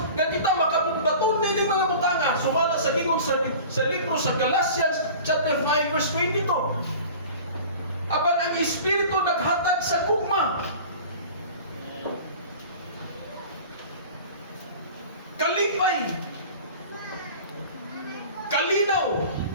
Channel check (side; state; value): both; inverted; correlation -0.40